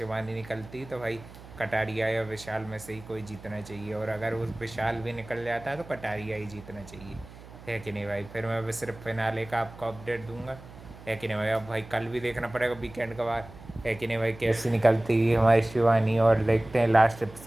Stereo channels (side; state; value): right; noise; hum, 18 dB below the sound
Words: निकलती तो भाई कटारिया या विशाल में से ही कोई जीतना चाहिए। और अगर वो विशाल भी निकल जाता तो कटारिया ही जीतना चाहिए, है कि नहीं भाई। फिर मैं बस सिर्फ फिनाले का आपको अपडेट दूंगा, है कि नहीं भाई। अब भाई कल भी देखना पड़ेगा वीकेंड के बाद, है कि नहीं भाई, कैसी निकलती है हमारी शिवानी। और देखते हैं लास्ट